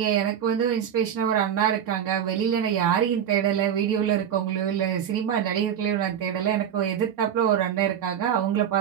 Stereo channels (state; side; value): quieter; left; 9.2 dB